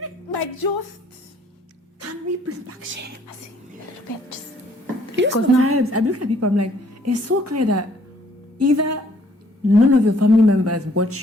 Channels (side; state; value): both; normal; correlation 0.62